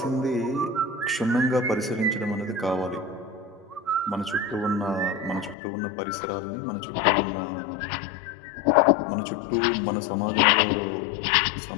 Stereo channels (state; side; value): drops out; right; at 5.6 s